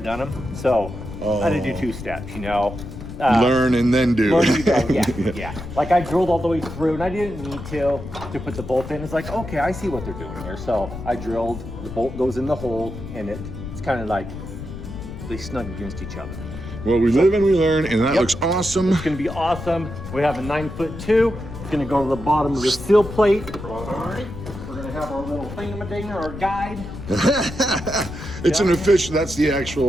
them, so I had to do 2 steps, you know. Learn and then do. Yeah. Like I drilled all the way through, and I didn't need to put the bolt in. It's like, okay, I see what they're doing here. So I drilled, the bolt goes in the hole, and it's kind of like they snug against each other. Well, we live and we learn, and that looks awesome. It's gonna be awesome. We have a 9'2". It's gonna go to the bottom of the seal plate. We're gonna have our little thingamadigger, our guide. It's an official, that's the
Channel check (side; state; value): left; noise; rumble, 10 dB below the sound